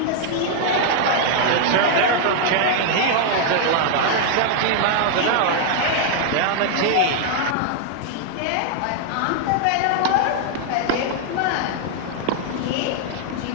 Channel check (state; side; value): different; both; correlation 0.00